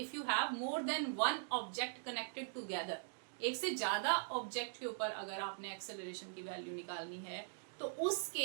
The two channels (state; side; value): silent; left; digital silence